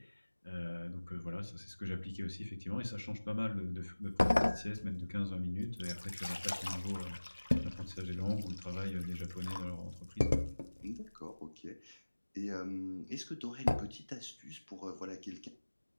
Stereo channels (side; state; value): both; inverted; correlation -1.00